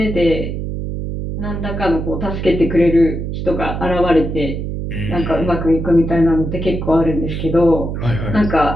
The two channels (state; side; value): noise; right; hum, 4 dB below the sound